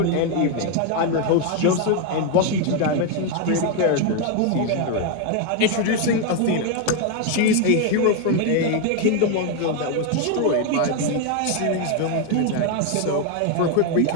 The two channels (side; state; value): both; different; correlation 0.01